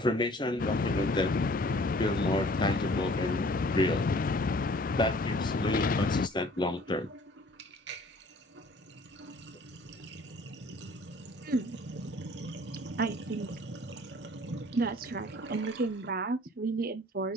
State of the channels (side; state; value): both; normal; correlation 0.52